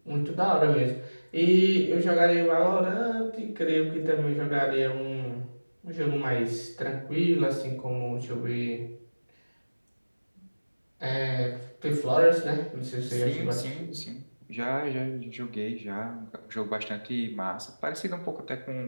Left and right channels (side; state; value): both; inverted; correlation -1.00